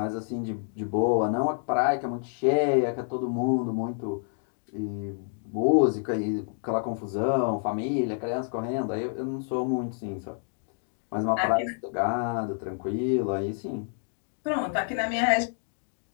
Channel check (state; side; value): silent; right; 59 dB below the other